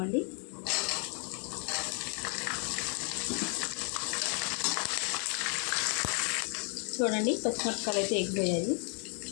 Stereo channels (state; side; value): quieter; right; 39.4 dB